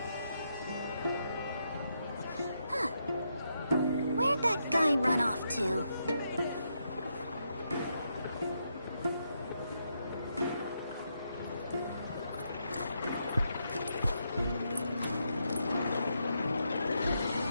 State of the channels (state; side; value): inverted; both; correlation -0.81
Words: Where'd that guy run off to?